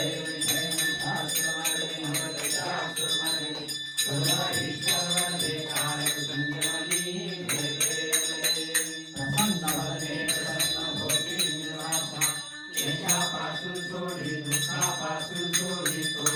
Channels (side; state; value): both; identical; correlation 1.00